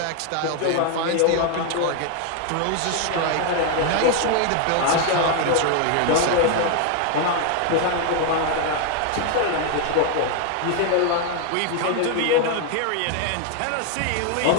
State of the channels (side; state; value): both; different; correlation 0.01